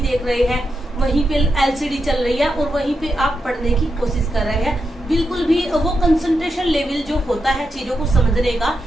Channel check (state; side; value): normal; both; correlation 0.86